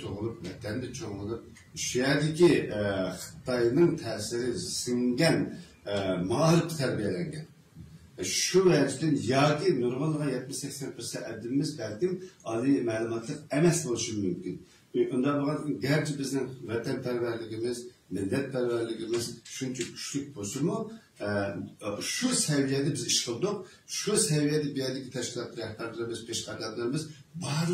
doğulup, vatanda çoğulup, şu yerdeki Xitay'ın tesiri singen mağlup terbiyelengen. Şu vecdin yaki normalde 70-80% edimimiz belki ali malumatlık emes oluşu mümkün. Ondan bakın gerçi bizim vatanperverliğimiz, milletperverliğimiz şunca güçlük bozumu şu seviyede biz iş kıldık, şu seviyede bir yerdeki teşkilat rehberlerimiz, peşkademlerimiz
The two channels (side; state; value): both; identical; correlation 1.00